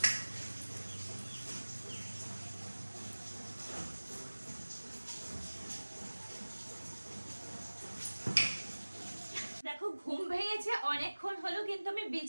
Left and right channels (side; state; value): both; inverted; correlation -1.00